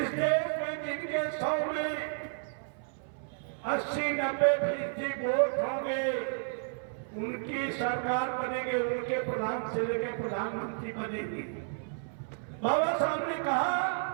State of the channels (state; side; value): silent; left; 57 dB below the other